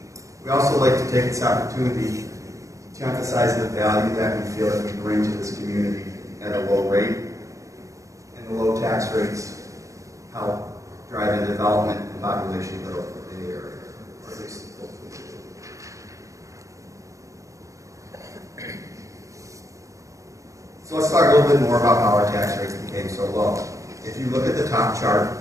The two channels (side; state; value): left; late; 0.15 ms